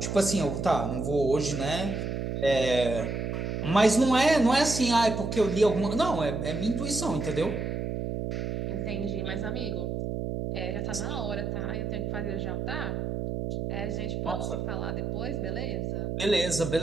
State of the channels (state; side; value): noise; right; hum, 2 dB below the sound